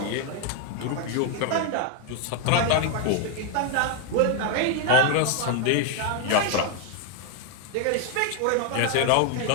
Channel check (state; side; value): different; both; correlation 0.00